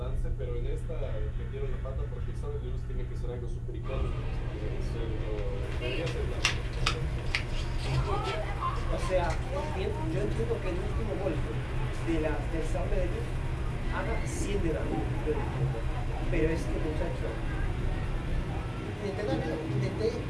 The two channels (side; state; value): both; identical; correlation 1.00